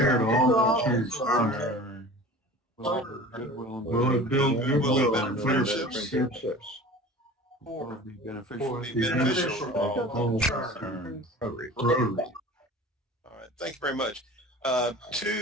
all concerned. Will it build goodwill and friendships? Will it be beneficial beneficial to all concerned? Rotary. All right, thank you very much.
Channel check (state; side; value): normal; both; correlation 0.39